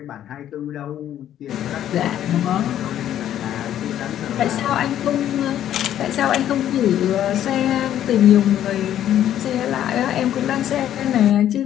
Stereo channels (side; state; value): right; quieter; 11.2 dB